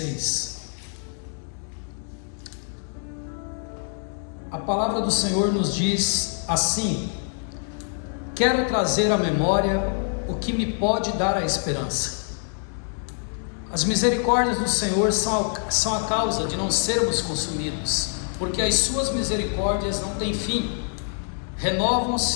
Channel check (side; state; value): right; silent; 59 dB below the other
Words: A palavra do Senhor nos diz assim: quero trazer à memória o que me pode dar a esperança. As misericórdias do Senhor são a causa de não sermos consumidos, porque as suas misericórdias não têm fim,